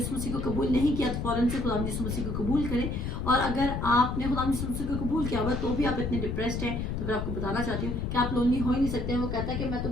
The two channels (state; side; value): noise; left; rumble, 3 dB below the sound